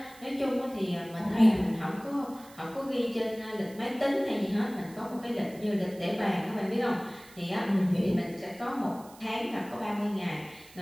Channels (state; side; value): noise; right; hiss, 22 dB below the sound